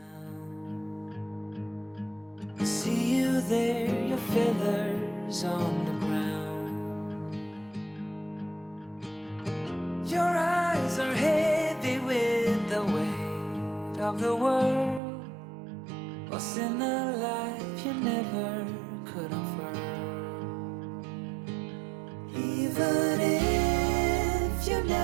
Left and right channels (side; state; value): left; drops out; at 15.0 s